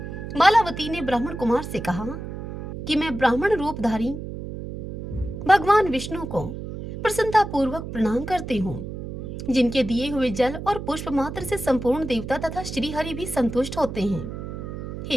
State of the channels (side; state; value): right; noise; hum, 8 dB below the sound